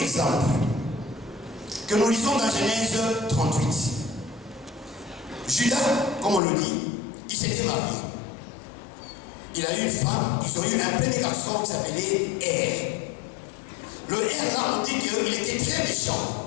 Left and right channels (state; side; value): drops out; right; at 6.4 s